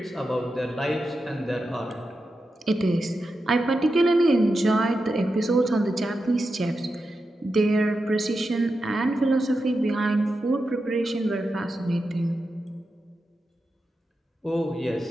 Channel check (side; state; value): both; normal; correlation 0.89